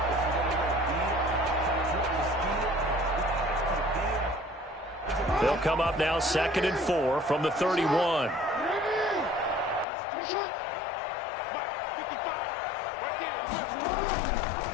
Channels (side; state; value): right; drops out; at 9.9 s